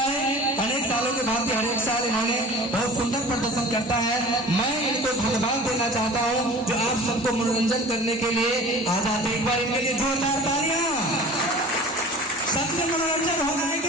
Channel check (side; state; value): both; normal; correlation 0.41